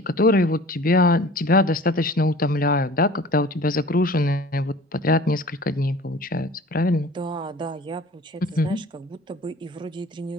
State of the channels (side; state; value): both; normal; correlation 0.44